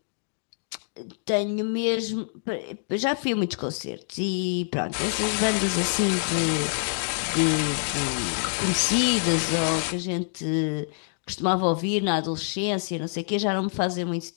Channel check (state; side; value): silent; right; digital silence